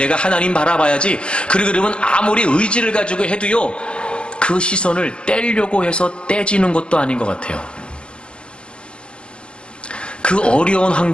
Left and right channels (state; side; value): late; right; 0.057 ms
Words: 하나님 바라봐야지, 그러면 아무리 의지를 가지고 해도요, 그 시선을 떼려고 해서 떼지는 것도 아닌 것 같아요. 그 어려운